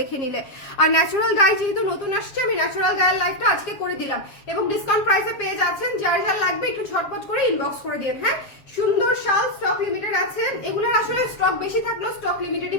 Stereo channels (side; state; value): right; late; 7.4 ms